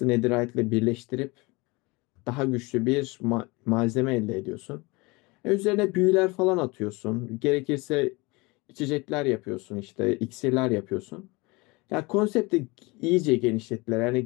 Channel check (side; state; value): right; quieter; 25.1 dB